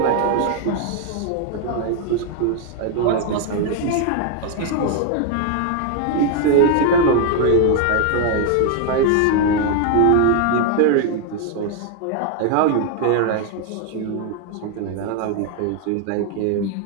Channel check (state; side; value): different; both; correlation 0.00